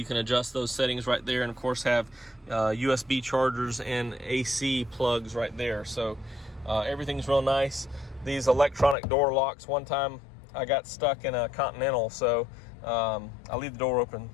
can adjust those settings right there. And of course have USB chargers and AC plugs right there. So everything's real nice. These electronic door locks, one time I got stuck in a Continental, so I'll leave the door open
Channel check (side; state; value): right; drops out; at 9.0 s